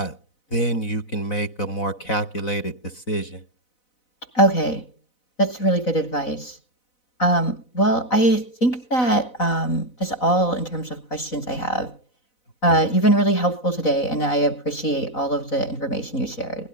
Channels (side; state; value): right; late; 4.0 ms